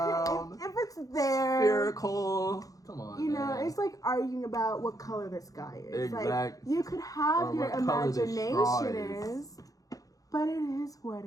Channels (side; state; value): right; late; 0.17 ms